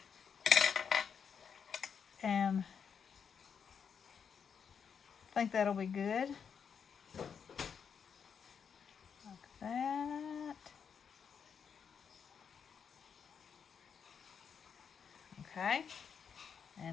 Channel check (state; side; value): quieter; right; 6.9 dB